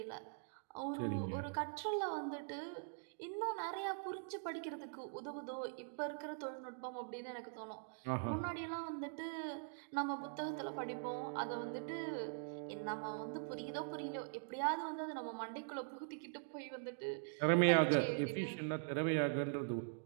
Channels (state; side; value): silent; left; digital silence